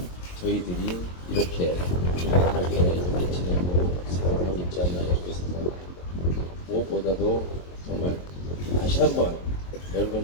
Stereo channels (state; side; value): late; right; 22 ms